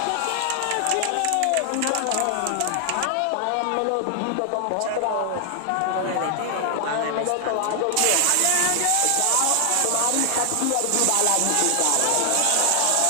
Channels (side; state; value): both; different; correlation 0.00